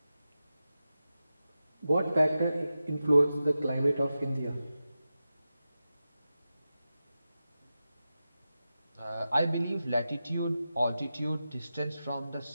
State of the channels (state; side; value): inverted; both; correlation -0.92